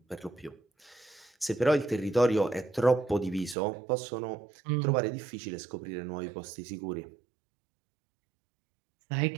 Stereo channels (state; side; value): drops out; left; at 3.6 s